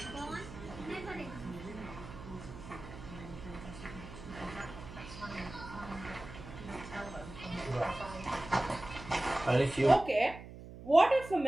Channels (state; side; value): noise; right; hum, 14 dB below the sound